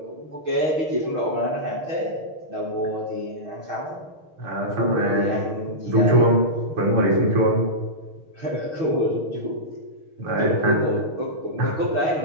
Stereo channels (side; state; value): left; late; 6.5 ms